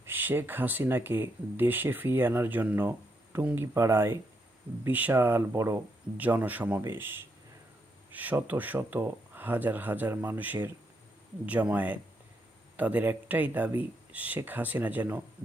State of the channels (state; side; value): normal; both; correlation 0.79